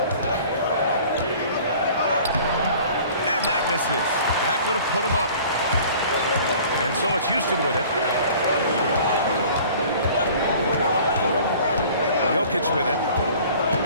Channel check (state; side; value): inverted; both; correlation -0.48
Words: And that misses. That would have put him up. And so it's Houston with it. Jokic with it.